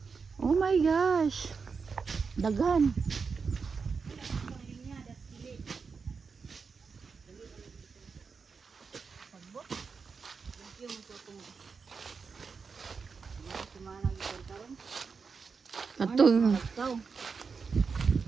Oh my gosh. Daghan. Katong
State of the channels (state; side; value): quieter; left; 5.3 dB